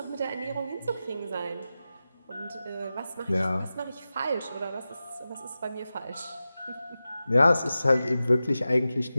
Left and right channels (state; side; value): inverted; both; correlation -0.93